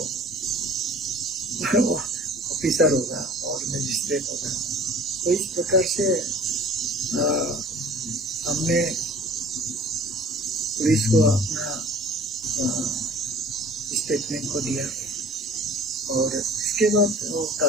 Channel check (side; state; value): both; normal; correlation 0.47